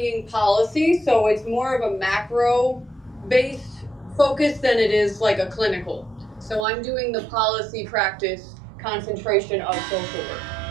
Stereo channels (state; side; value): drops out; left; at 6.7 s